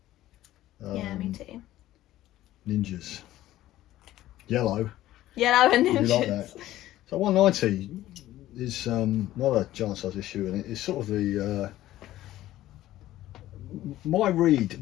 Yeah, me too. Ninjas. Yellow. Yellow and ninjas. You like that? So 190 is another giant size issue, and it's sort of the my read.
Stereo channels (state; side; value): quieter; right; 14.6 dB